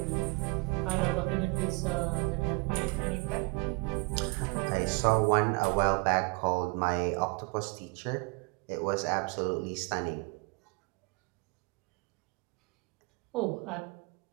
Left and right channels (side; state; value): left; quieter; 29.7 dB